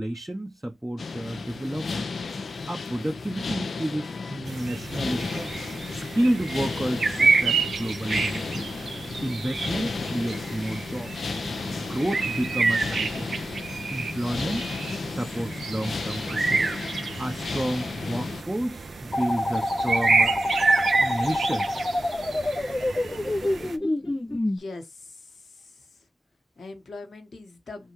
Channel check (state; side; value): normal; both; correlation 0.92